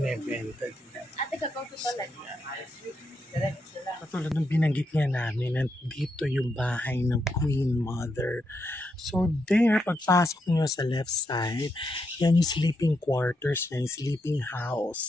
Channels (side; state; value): both; normal; correlation 0.81